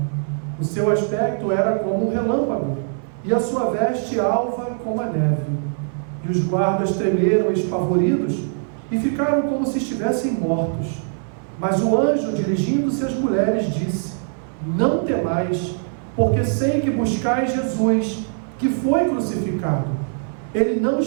O seu aspecto era como um relâmpago, e a sua veste alva como a neve. E os guardas tremeram espavoridos e ficaram como se estivessem mortos. Mas o anjo, dirigindo-se às mulheres, disse: Não temais, porque sei que buscais Jesus, que foi crucificado. Ele não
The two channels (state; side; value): silent; left; 58 dB below the other